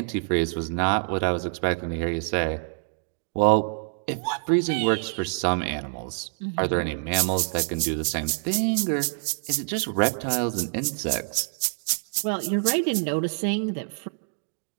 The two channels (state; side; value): silent; left; digital silence